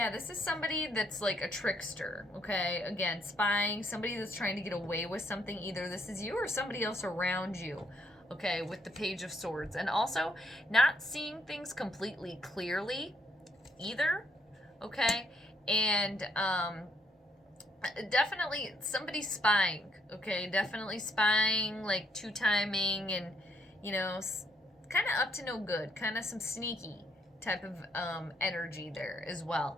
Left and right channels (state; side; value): normal; both; correlation 0.72